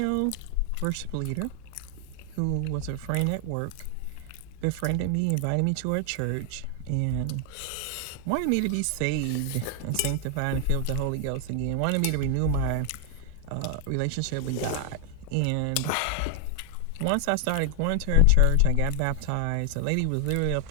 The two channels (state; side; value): different; both; correlation 0.00